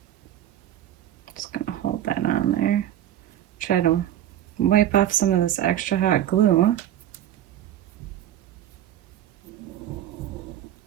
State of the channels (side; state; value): left; quieter; 11.6 dB